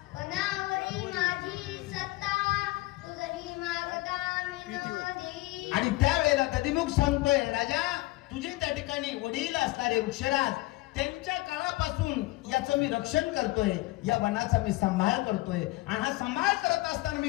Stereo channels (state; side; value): quieter; right; 20.0 dB